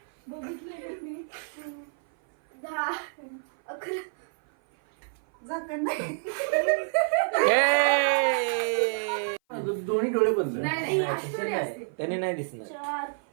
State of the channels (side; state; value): left; silent; 56 dB below the other